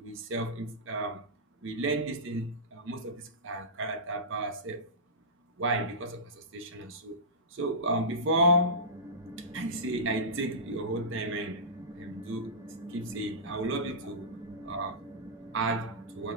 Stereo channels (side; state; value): both; normal; correlation -0.17